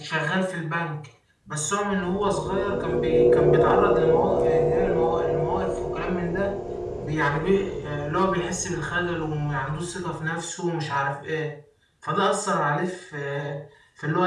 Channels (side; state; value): both; identical; correlation 1.00